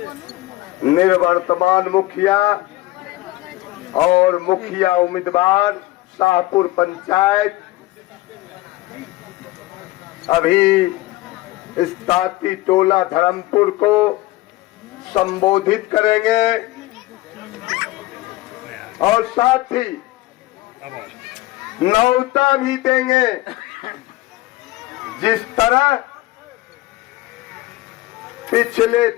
निवर्तमान मुखिया और मुखिया उम्मीदवार शाहपुर पंचायत अभी इस ताती टोला धर्मपुर को संबोधित करेंगे और साथ ही न्योता भी देंगे। जिस तरह पिछले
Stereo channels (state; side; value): quieter; right; 18.0 dB